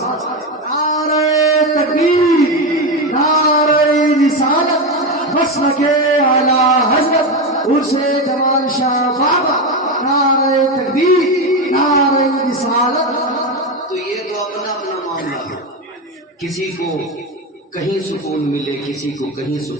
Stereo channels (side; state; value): both; normal; correlation 0.15